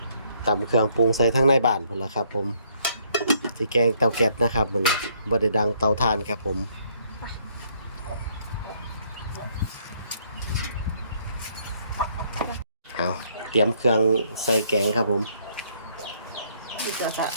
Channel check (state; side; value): inverted; both; correlation -0.67